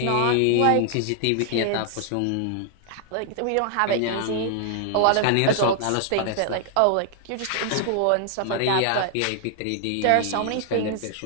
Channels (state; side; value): different; both; correlation 0.00